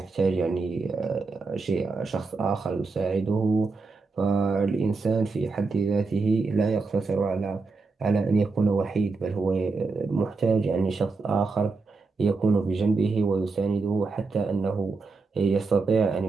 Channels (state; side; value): quieter; left; 4.2 dB